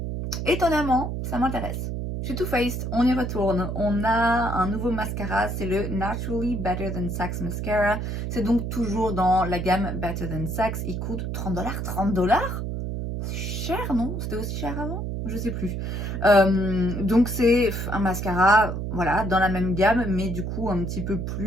étonnamment, ça m'intéresse. Chez Too Faced, on y retourne. On a un nouveau mascara, c'est le Naturally Better Than Sex Mascara. C'est donc toujours dans la gamme Better Than Sex. Il coûte 30 $. 30 $? C'est cher, non? C'était aussi cher avant? Je sais plus. Donc c'est un mascara, voilà, dans la même gamme, mais du coup un petit peu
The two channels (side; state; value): right; noise; hum, 3 dB below the sound